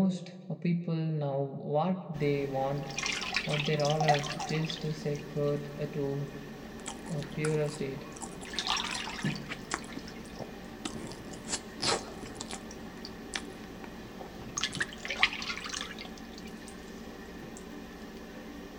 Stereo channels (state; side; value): identical; both; correlation 1.00